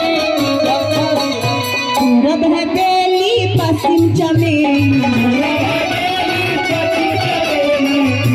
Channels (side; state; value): both; identical; correlation 1.00